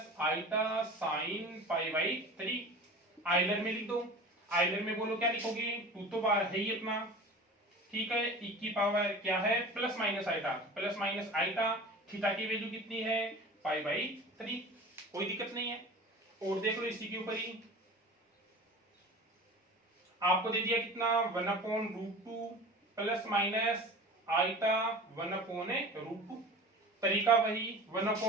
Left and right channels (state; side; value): normal; both; correlation 0.37